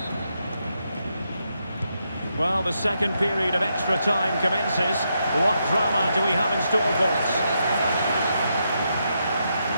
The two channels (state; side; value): inverted; both; correlation -0.81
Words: Well, the second period of extra time commences. What drama do we have in store for us?